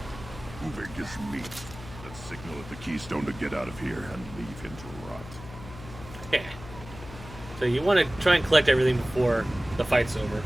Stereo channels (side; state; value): left; noise; hum, 14 dB below the sound